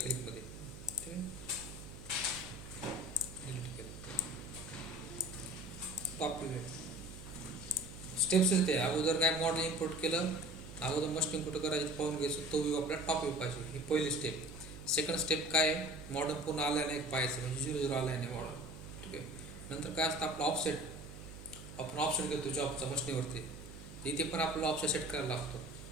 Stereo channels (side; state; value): right; noise; hum, 14 dB below the sound